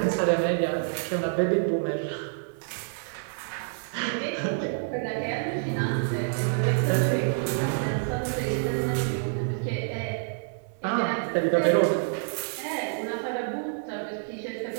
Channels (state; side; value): silent; left; digital silence